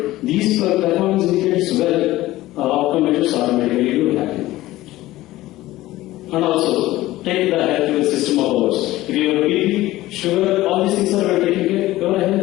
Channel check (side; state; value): right; quieter; 16.8 dB